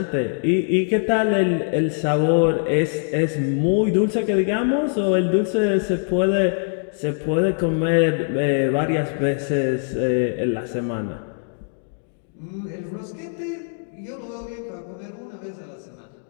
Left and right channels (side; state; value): right; silent; digital silence